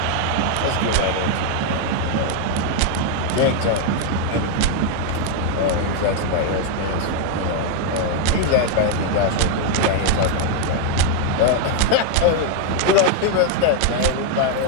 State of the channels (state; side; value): different; both; correlation 0.00